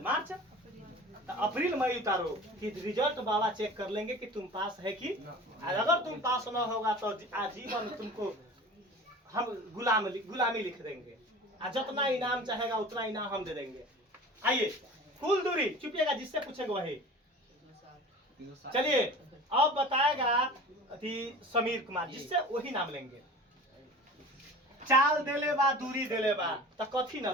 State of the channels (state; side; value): normal; both; correlation 0.39